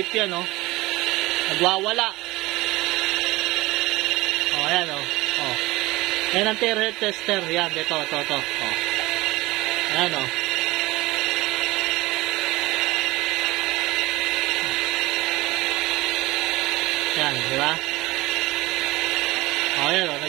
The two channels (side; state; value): left; quieter; 20.0 dB